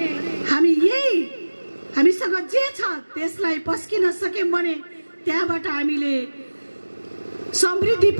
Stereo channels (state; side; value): inverted; both; correlation -1.00